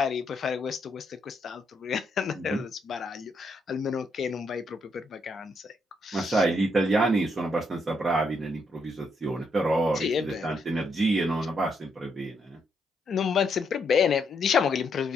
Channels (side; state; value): both; normal; correlation 0.77